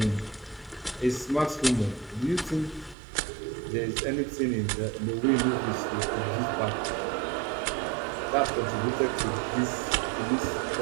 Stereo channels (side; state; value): left; drops out; at 3.0 s